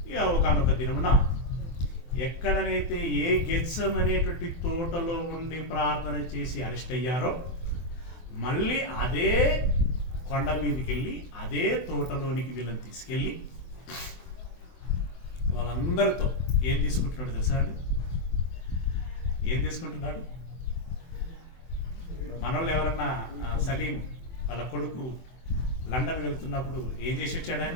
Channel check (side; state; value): right; late; 24 ms